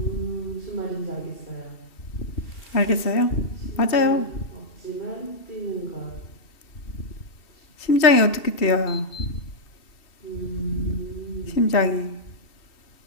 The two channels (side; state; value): right; late; 2.7 ms